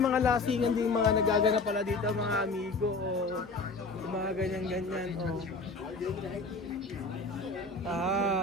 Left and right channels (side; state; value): right; quieter; 3.6 dB